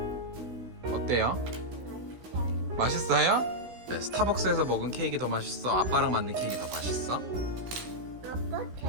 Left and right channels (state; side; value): late; left; 16 ms